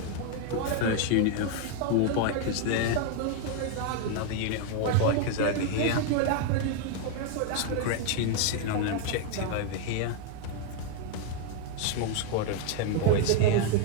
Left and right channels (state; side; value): different; both; correlation 0.01